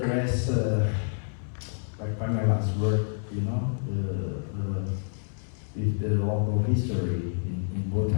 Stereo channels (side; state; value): right; silent; 59 dB below the other